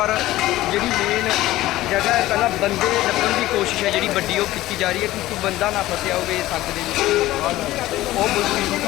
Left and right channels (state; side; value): quieter; right; 16.2 dB